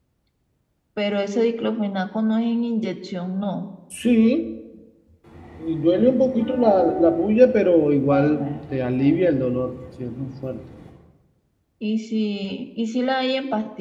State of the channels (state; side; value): identical; both; correlation 1.00